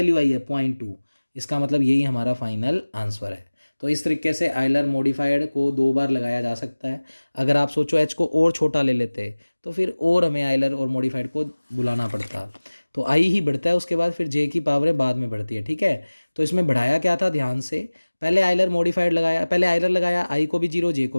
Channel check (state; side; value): inverted; both; correlation -1.00